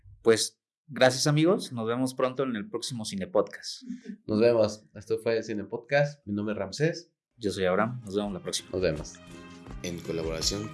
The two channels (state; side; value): identical; both; correlation 1.00